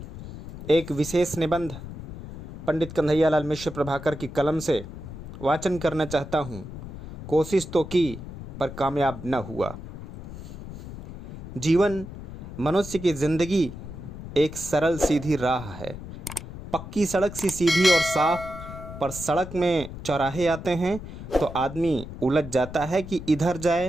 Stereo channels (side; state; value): left; noise; rumble, 12 dB below the sound